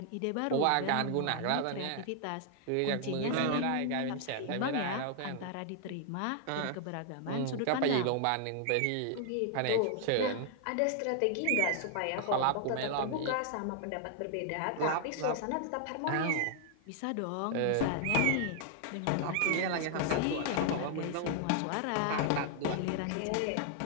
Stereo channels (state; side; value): different; both; correlation 0.00